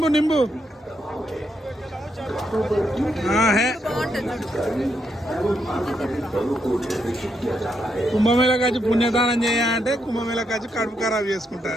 नींबू हाँ है। కుంభమేళకు వచ్చి పుణ్యదానం చేయాలంటే కుంభమేళకు వచ్చి కడుపు ఖరాబ్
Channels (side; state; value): both; normal; correlation 0.79